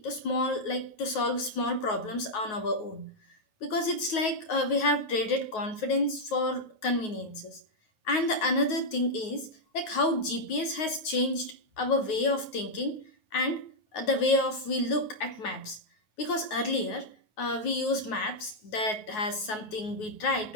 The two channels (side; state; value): right; late; 9.4 ms